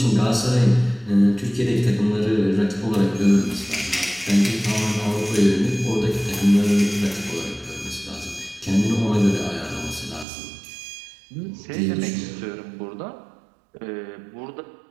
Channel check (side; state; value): left; drops out; at 10.2 s